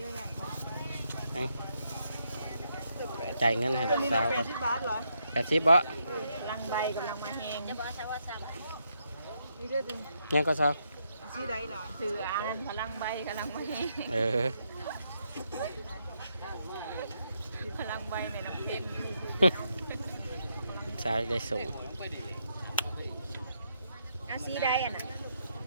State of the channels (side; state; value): both; inverted; correlation -0.78